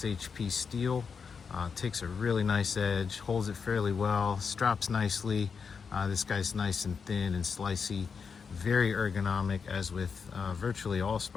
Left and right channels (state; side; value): quieter; right; 5.9 dB